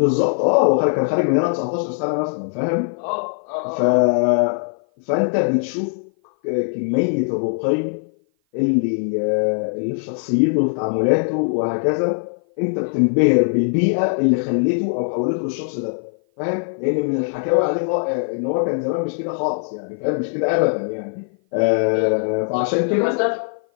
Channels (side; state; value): right; silent; 55 dB below the other